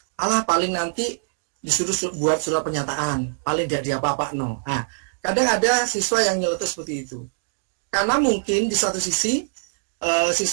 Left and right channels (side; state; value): left; silent; digital silence